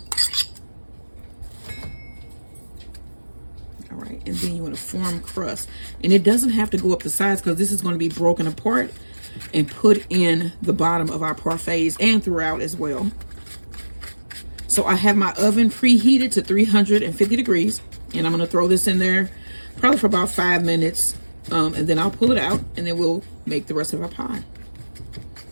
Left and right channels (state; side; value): inverted; both; correlation -1.00